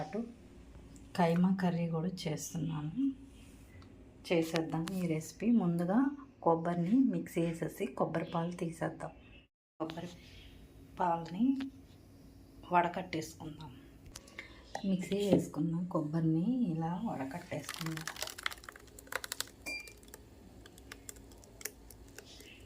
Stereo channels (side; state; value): both; identical; correlation 1.00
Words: కైమా కర్రీ కూడా చేసేద్దాం ఈ రెసిపీ. ముందుగా కొబ్బరిని మిక్సీ వేసేసి కొబ్బరి పాలు తీసేద్దాం. కొబ్బరి పాలని వడకట్టేసుకుందాం. మిక్సీ వేసుకున్నాం కొబ్బరిని ఇలా వడకట్టేసుకుందాం.